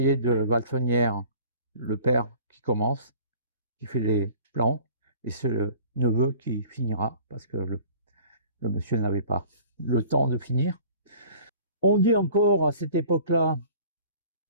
de Valfenière, le père qui commence, qui fait les plans, et c'est le neveu qui finira, parce que le monsieur n'avait pas le temps de finir. On dit encore à cette époque-là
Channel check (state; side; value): inverted; both; correlation -0.47